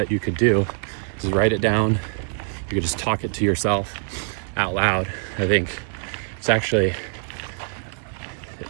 you could do. Just write it down. You could just talk it to yourself out loud. I think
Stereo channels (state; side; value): silent; left; 63 dB below the other